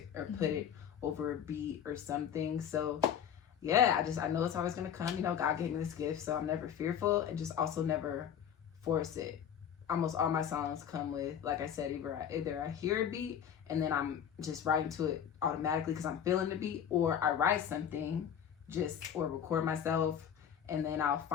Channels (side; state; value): right; quieter; 8.7 dB